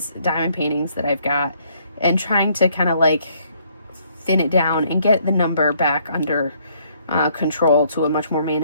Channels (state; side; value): inverted; both; correlation -0.67